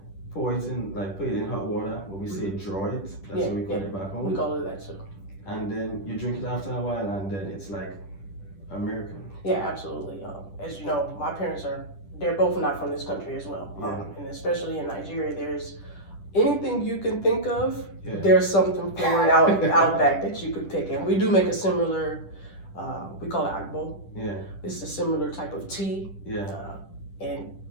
Put it in hot water, what we say draw it. That's what we call it back home. We call it that too. And then you drink it after a while, and then it's like a miracle. Yeah, absolutely. As you know, my parents they're both not from this country as well. And especially in Nigeria, there's anything you can think of, there's something for it out back that you could pick. And we do make a similar, we call it agbo. It's a similar type of tea. And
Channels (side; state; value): right; late; 10 ms